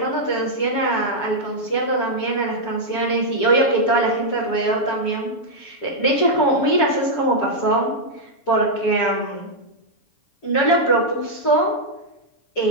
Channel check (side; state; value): right; late; 7.0 ms